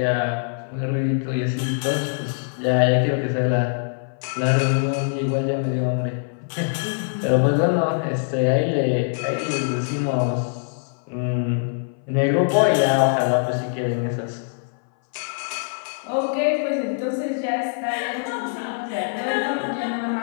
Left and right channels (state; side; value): silent; right; 60 dB below the other